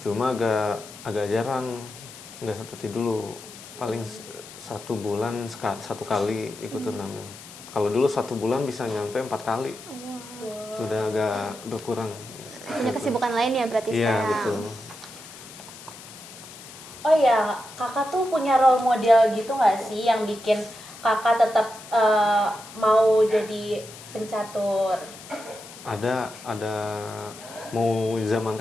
cuma agak jarang, nggak seperti dulu. Paling 1 bulan satu kali ikut turnamen. Kalau dulu 1 bulan bisa nyampe 4 kali. Sudah agak berkurang. Punya kesibukan lain ya berarti Iya, sekarang? betul. Oh ya, kakak tuh punya role model gitu nggak sih yang bikin kakak tetap mau jadi pencatur? Ada mau zaman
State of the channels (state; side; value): noise; left; hiss, 16 dB below the sound